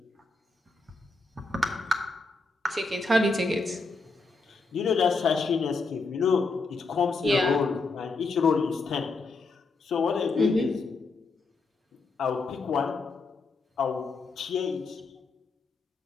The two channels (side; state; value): right; quieter; 3.7 dB